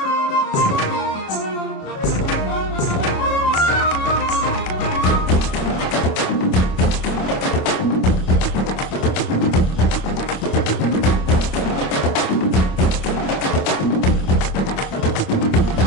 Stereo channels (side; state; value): right; late; 26 ms